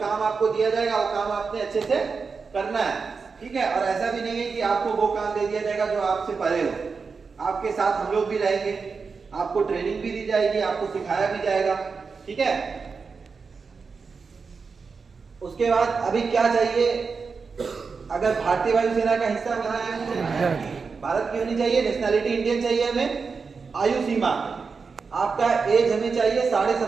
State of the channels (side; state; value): left; quieter; 5.0 dB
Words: आपको दिया जाएगा वो काम आपने अच्छे से करना है, ठीक है। और ऐसा भी नहीं है कि आपको वो काम दे दिया जाएगा जो आपसे परे हो। आपके साथ हम लोग भी रहेंगे, आपको ट्रेनिंग भी दी जाएगी, आपको सिखाया भी जाएगा, ठीक है। उसके बाद अभी क्या चाहिए, अगर भारतीय वायुसेना का हिस्सा बना है, भारत की होनी चाहिए, नेशनैलिटी इंडियन चाहिए हमें। आयु सीमा आपका एज हमें चाहिए